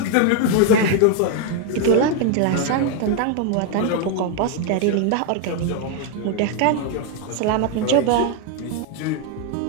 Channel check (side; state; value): both; different; correlation 0.00